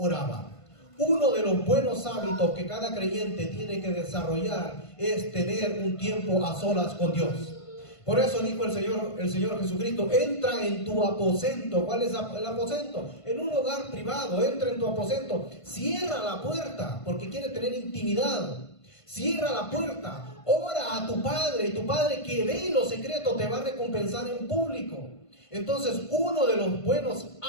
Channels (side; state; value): right; late; 1.5 ms